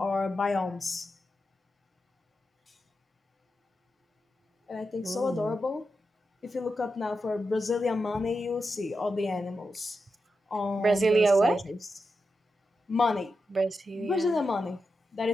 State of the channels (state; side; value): normal; both; correlation 0.88